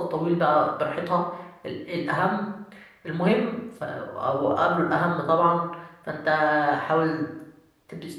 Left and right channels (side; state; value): both; identical; correlation 1.00